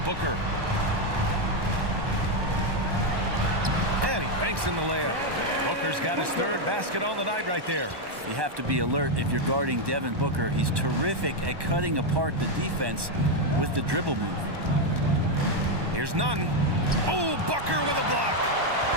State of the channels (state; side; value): late; left; 1.1 ms